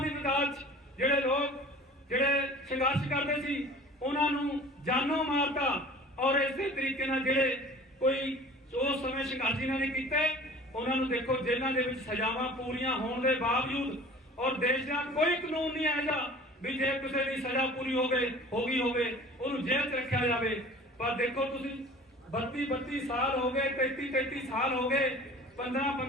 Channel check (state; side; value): normal; both; correlation 0.44